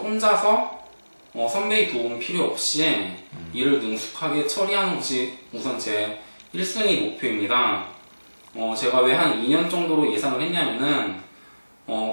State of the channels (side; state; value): both; inverted; correlation -1.00